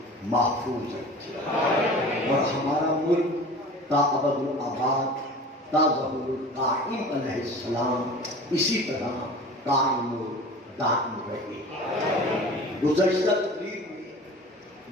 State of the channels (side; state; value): both; normal; correlation 0.39